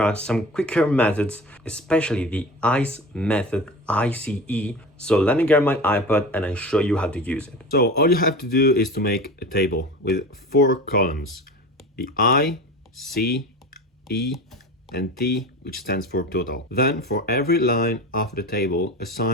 are some quicker methods, especially the ICE method, ICE. So let me get my iPad and I show you how to use it. So all you have to do is to make a table with 4 columns. The I, C, E, and T, which stands for total. Then for every line of the table,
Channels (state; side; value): normal; both; correlation 0.32